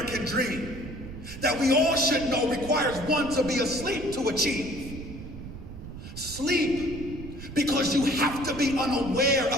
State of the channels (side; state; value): right; noise; rumble, 11 dB below the sound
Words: dream that we all should know requires one to be asleep to achieve. Sleep, because you have to be unaware